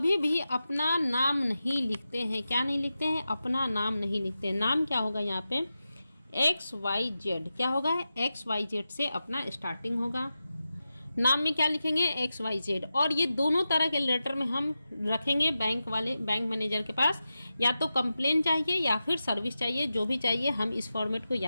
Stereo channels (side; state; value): both; inverted; correlation -0.92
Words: भी अपना नाम नहीं लिखते हैं। क्या नहीं लिखते हैं, अपना नाम नहीं लिखते हैं। नाम क्या होगा यहाँ पे, XYZ, क्या होगा, XYZ से अपना स्टार्टिंग होगा। नाम में क्या लिखेंगे, XYZ। और ये दोनों तरह के लेटर में हम रखेंगे बैंक मैनेजर के पास, या तो कंप्लेन चाहिए या फिर सर्विस चाहिए, जो भी चाहिए हम इस फॉर्मेट को